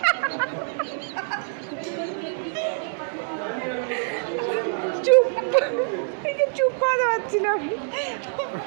চুপ, চুপ করাতে পারছি না।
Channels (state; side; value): silent; left; digital silence